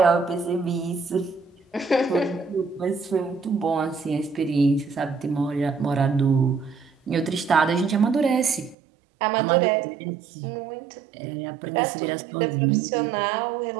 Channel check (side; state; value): left; drops out; at 8.8 s